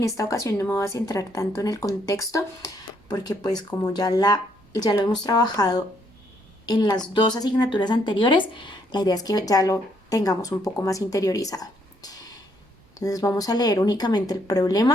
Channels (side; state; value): both; normal; correlation 0.71